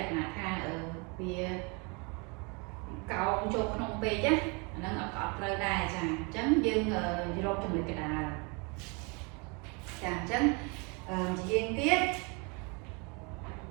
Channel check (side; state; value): left; quieter; 31.4 dB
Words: ក្ខណៈថាវាកោងចូលក្នុងពេកណាអាហ្នឹងអត់ត្រូវដែរចាអញ្ចឹងយើងរកចំណុចកណ្ដាលចាអញ្ចឹងជាយើងទៀត